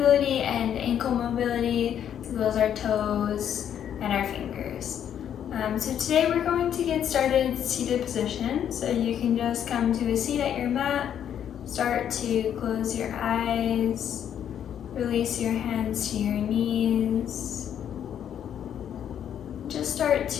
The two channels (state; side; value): quieter; right; 9.5 dB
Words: and ankle mobility, as well as our toes and our fingers. So today we're going to get started in seated position. So you can just come to a seat at your mat, start to close your eyes, release your hands to your knees. Just start